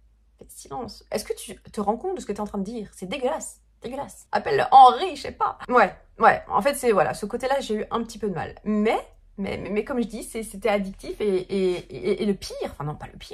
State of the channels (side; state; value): both; identical; correlation 1.00